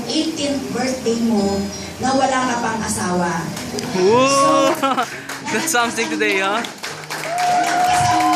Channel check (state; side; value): identical; both; correlation 1.00